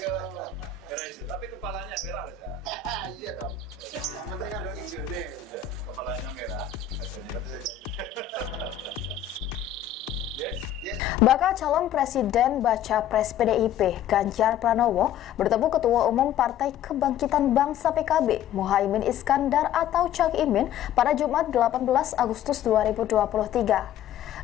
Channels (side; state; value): right; quieter; 10.0 dB